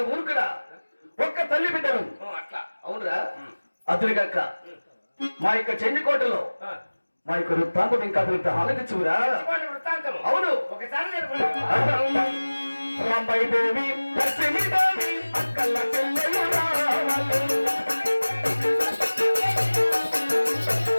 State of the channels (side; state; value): both; inverted; correlation -1.00